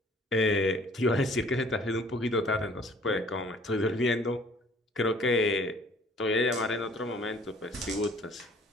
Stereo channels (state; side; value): normal; both; correlation 0.56